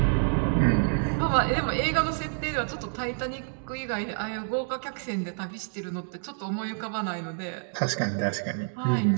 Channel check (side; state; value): left; silent; digital silence